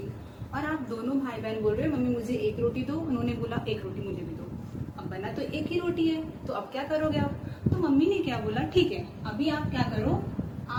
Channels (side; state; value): both; identical; correlation 1.00